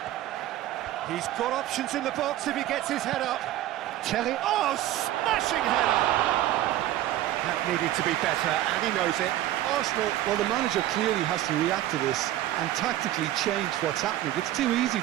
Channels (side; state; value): left; quieter; 13.9 dB